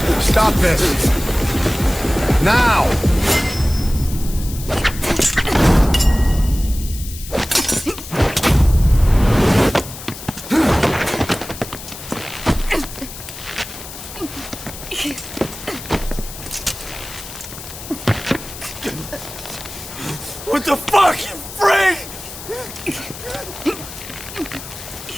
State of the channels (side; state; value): left; noise; hiss, 13 dB below the sound